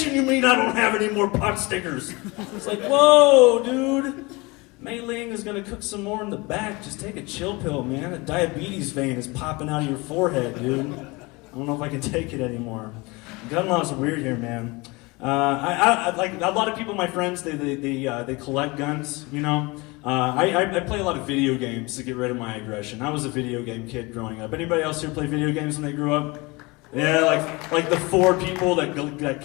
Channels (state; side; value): quieter; right; 25.0 dB